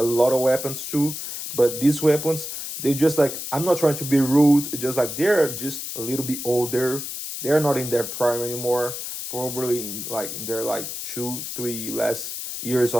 lot of weapons too. But these weapons, they just like, I'm not trying to be rude, just like they're just a little bit older. They're not in their prime anymore. Probably in their like 2, 3 last years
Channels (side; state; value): left; noise; hiss, 7 dB below the sound